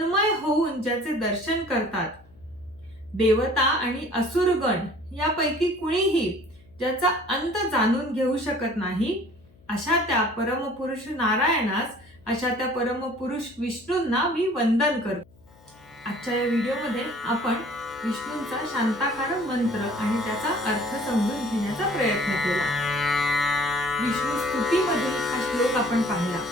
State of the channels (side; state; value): left; noise; hum, 28 dB below the sound